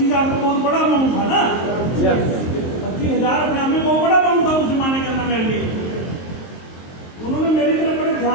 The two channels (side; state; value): right; late; 23 ms